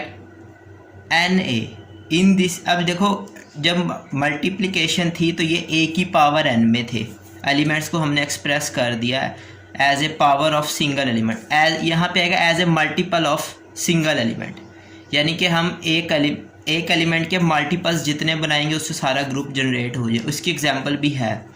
Na in this। अब देखो, जब मल्टीप्लिकेशन थी तो ये a की पावर n में थे, एलिमेंट्स को हमने एक्सप्रेस कर दिया as a power of single element, as यहाँ पे आएगा as a multiple of single element, यानी कि हम एक एलिमेंट के मल्टीपल्स जितने बनाएंगे उससे सारा ग्रुप जनरेट हो जाए। उसकी एग्जांपल भी है,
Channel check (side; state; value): both; identical; correlation 1.00